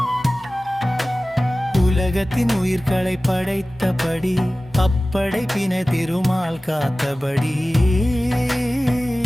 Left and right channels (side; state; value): both; normal; correlation 0.97